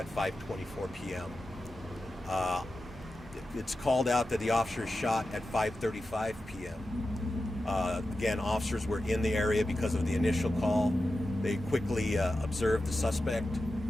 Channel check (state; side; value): normal; both; correlation 0.92